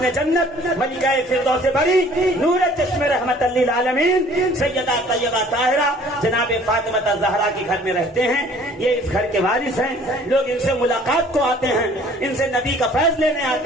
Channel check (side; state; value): both; normal; correlation 0.53